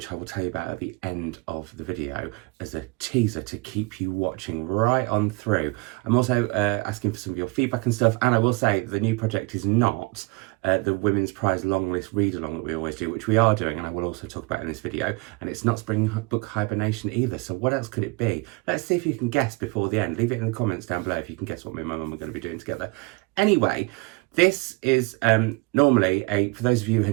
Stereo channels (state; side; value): quieter; left; 26.0 dB